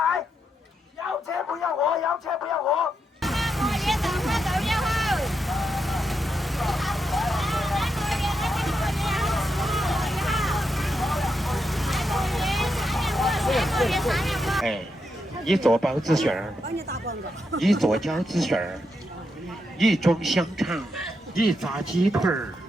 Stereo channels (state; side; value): normal; both; correlation 0.83